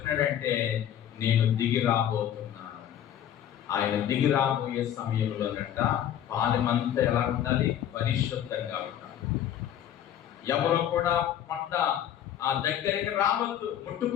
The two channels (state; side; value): quieter; right; 10.5 dB